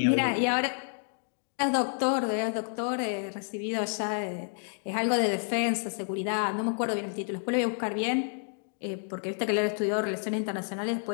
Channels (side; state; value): right; silent; 57 dB below the other